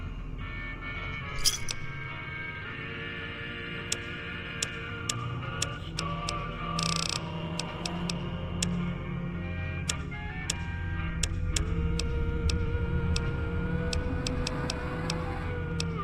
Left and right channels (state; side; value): identical; both; correlation 1.00